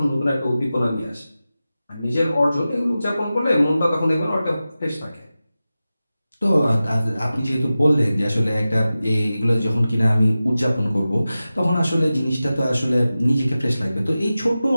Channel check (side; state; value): both; inverted; correlation -0.95